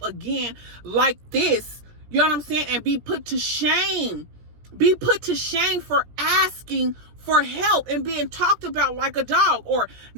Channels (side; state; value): left; late; 17 ms